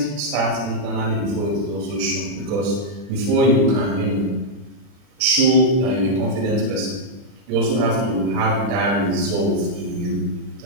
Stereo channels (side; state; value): left; late; 39 ms